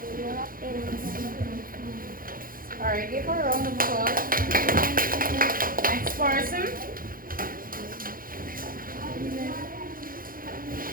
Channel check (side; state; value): left; late; 0.41 ms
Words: All right, give her a round of applause. Next person.